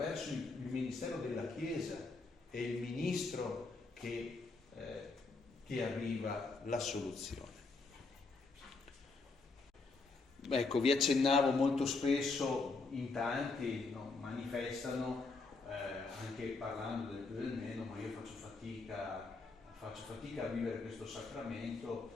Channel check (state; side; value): quieter; right; 3.8 dB